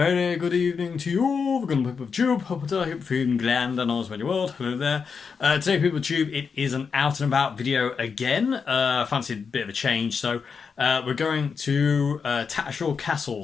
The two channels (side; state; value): right; quieter; 5.8 dB